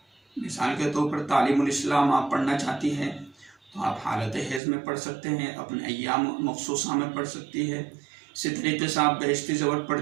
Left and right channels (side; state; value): left; drops out; at 4.6 s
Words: मिसाल के तौर पर तालीमुल इस्लाम आप पढ़ना चाहती हैं तो आप हालत हैज़ में पढ़ सकते हैं, अपने अय्याम मखसूसा में पढ़ सकती है। इसी तरीके से आप बहिश्ती ज़बर